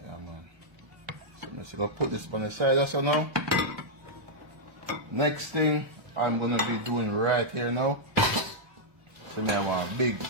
Yeah man. So I'm just gonna put this on the side also now. Next thing I'm gonna be doing right here now. So now I want a big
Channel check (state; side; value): late; left; 1.0 ms